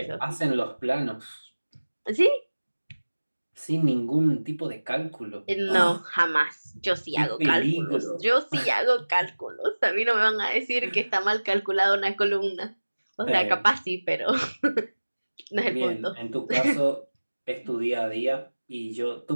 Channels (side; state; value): both; inverted; correlation -1.00